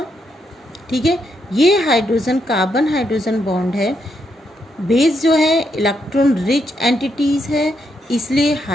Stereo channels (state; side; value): normal; both; correlation 0.79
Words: ठीक है। ये हाइड्रोजन कार्बन हाइड्रोजन बॉन्ड है, बेस जो है इलेक्ट्रॉन रिच एंटिटीज़ है, इसलिए